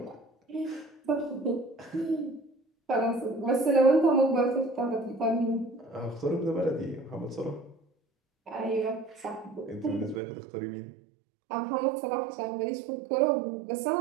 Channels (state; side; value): drops out; left; at 10.2 s